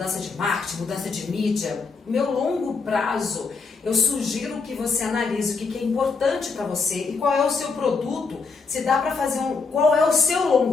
de marketing, mudança de mídia. Meu longo prazo, eu sugiro que você analise o que é importante para você e qual é o seu produto, se dá para fazer qual é o seu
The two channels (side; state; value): right; quieter; 4.6 dB